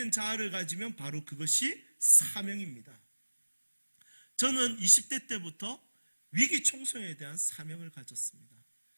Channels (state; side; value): inverted; both; correlation -1.00